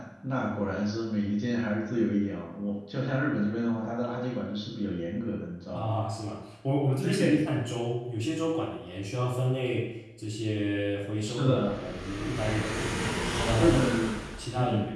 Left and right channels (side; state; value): both; identical; correlation 1.00